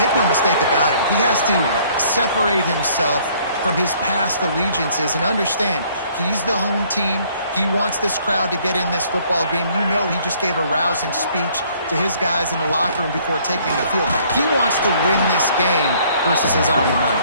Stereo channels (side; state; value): both; inverted; correlation -0.61